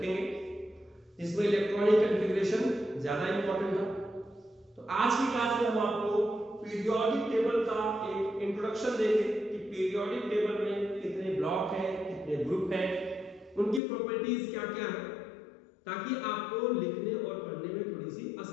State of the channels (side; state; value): right; drops out; at 13.8 s